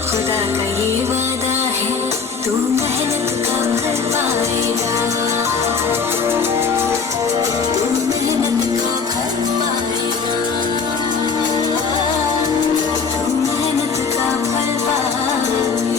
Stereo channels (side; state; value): right; quieter; 5.4 dB